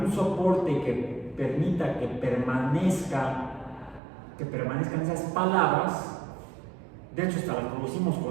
soporte que permita que permanezcan esas palabras, de hecho hasta las producimos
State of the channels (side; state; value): left; drops out; at 4.0 s